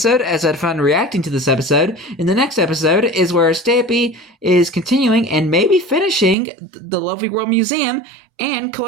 as I had fun reacting to this episode. In the next episode is where Stampy is continuing and maybe finishing the Lovely World Museum and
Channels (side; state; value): left; drops out; at 6.4 s